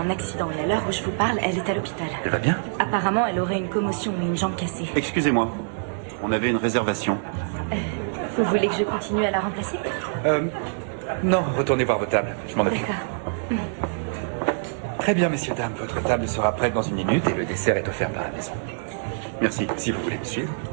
accident et à l'heure où je vous parle, elle est à l'hôpital. Elle va bien? Apparemment, elle aurait une commotion et une jambe cassée. Excusez-moi, on avait une réservation. Vous voulez que je continue à la remplacer? Non, retournez voir vos tables, je m'en occupe. D'accord. Très bien, messieurs, dames, votre table sera prête dans 1 minute et le dessert est offert par la maison. Merci. Si vous voulez me suivre.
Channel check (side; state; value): left; silent; digital silence